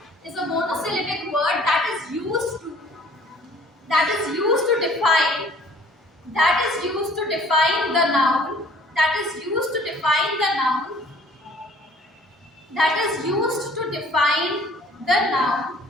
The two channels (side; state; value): both; normal; correlation 0.54